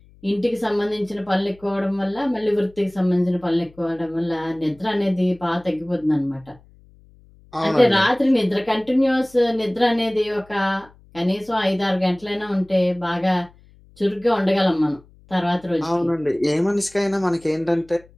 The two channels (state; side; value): noise; left; hum, 27 dB below the sound